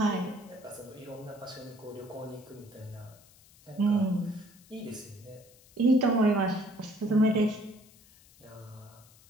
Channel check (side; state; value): left; noise; hiss, 26 dB below the sound